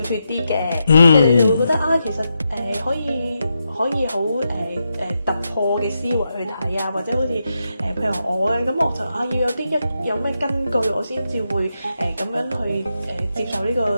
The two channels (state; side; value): inverted; both; correlation -0.86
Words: 脫啲嘅，你就會覺得其實可以好突破嘅思維去睇啊，或者好似譬如我咧，咁我就要有咩根據，我先至會咁樣去接受呢